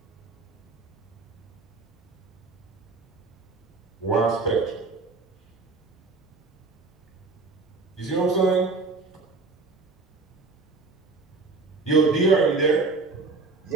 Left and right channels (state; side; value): quieter; left; 3.8 dB